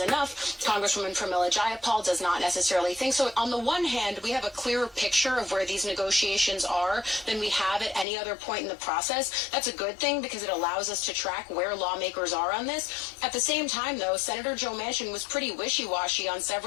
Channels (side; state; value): right; drops out; at 8.1 s